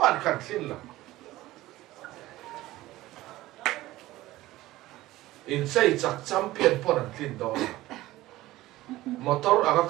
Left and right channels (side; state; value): left; quieter; 17.0 dB